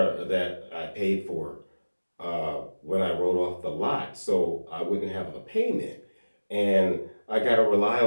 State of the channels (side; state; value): both; inverted; correlation -1.00